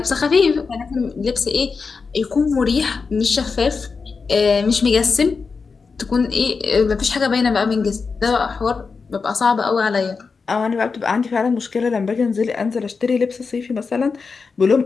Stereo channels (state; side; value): quieter; right; 4.9 dB